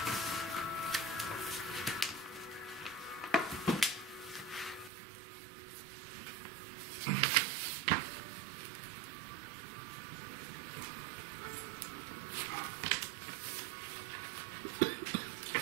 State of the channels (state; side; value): drops out; left; at 4.9 s